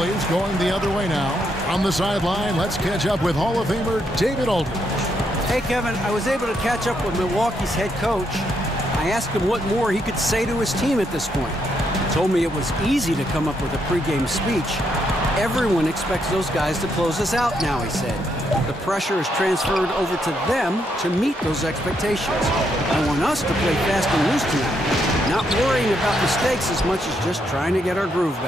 going the other way now. On the sideline, let's catch up with Hall of Famer David Aldridge. Hey, Kevin, I was able to catch up with Milwaukee's head coach. I asked him what more he could say to his team at this point. He told me it was easy to come up with a pregame speech. Everyone expects those guys to close us out now, he said. The pressure is transferred over to them to meet those expectations. I want us to play fast and loose tonight, not worrying about mistakes as much as just trying to get our groove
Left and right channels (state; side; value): normal; both; correlation 0.77